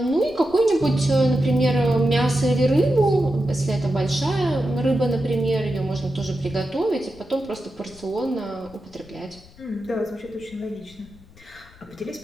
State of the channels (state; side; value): noise; left; rumble, 24 dB below the sound